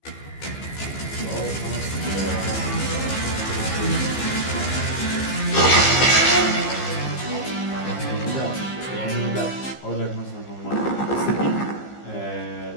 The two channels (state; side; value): late; right; 15 ms